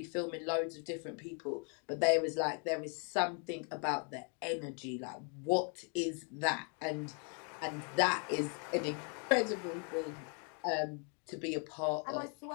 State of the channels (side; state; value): right; quieter; 39.9 dB